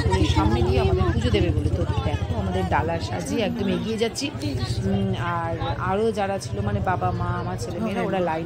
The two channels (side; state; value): both; identical; correlation 1.00